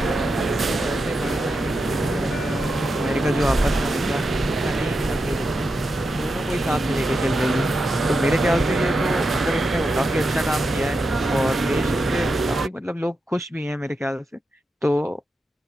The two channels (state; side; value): normal; both; correlation 0.87